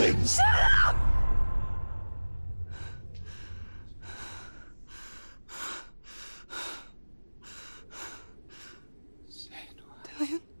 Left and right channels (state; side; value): inverted; both; correlation -1.00